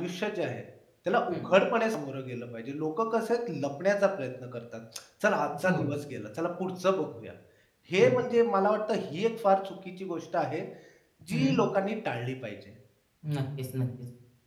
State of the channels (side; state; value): both; identical; correlation 1.00